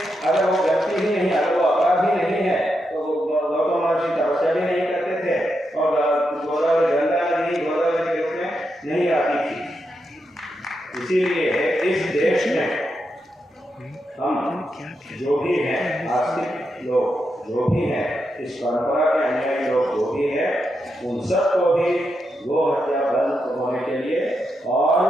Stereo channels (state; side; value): normal; both; correlation 0.84